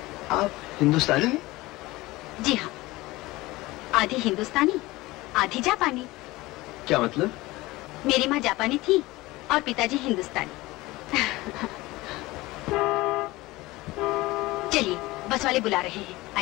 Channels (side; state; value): right; quieter; 19.9 dB